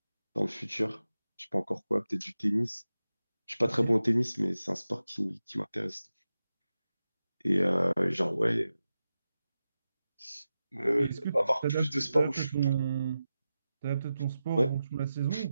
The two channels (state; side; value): inverted; both; correlation -0.92